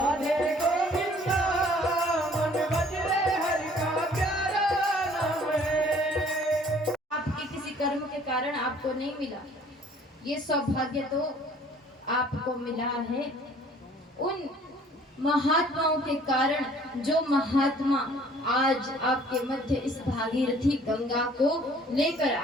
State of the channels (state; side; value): normal; both; correlation 0.55